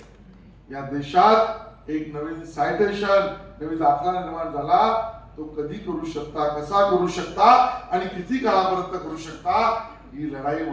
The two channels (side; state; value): both; identical; correlation 1.00